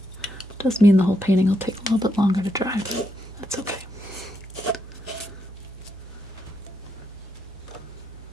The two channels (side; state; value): both; normal; correlation 0.80